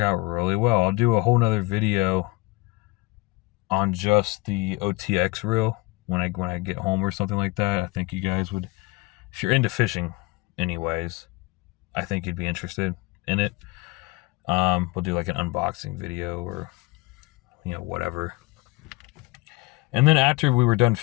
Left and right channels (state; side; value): quieter; right; 23.3 dB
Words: really well. I'll do a whole nother video on just the OTX reel when I get home or something like that. I think you guys would, if you're into fishing anyways, I think you'd be interested in it. We'll do like an unboxing video or, whatever. And then after we were done